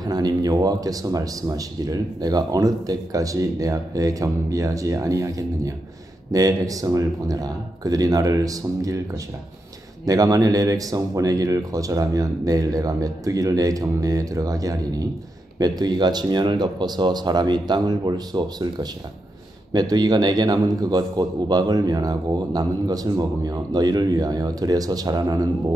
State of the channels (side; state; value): both; normal; correlation 0.86